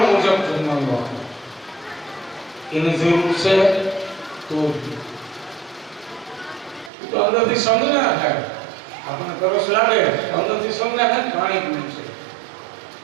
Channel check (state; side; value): drops out; left; at 6.9 s